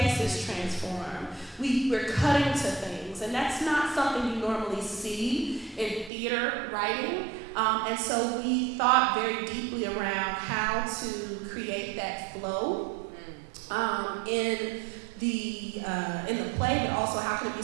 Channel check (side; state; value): left; drops out; at 6.1 s